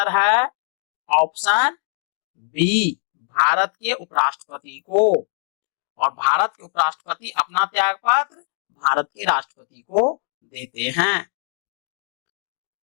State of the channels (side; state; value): right; silent; digital silence